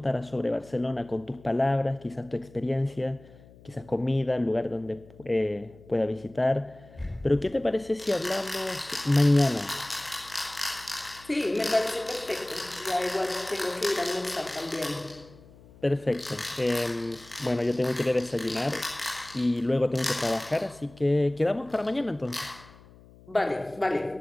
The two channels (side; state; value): left; noise; hum, 23 dB below the sound